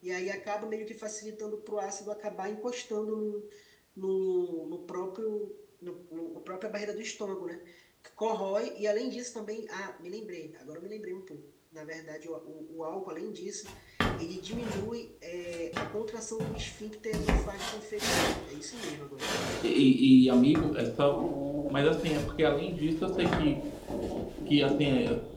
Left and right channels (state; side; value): identical; both; correlation 1.00